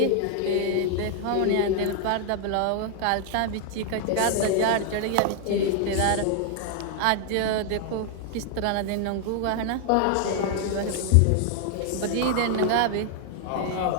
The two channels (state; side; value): different; both; correlation 0.00